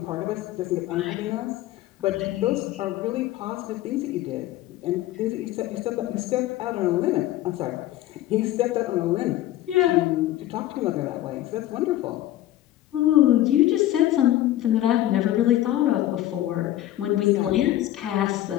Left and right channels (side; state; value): right; quieter; 14.1 dB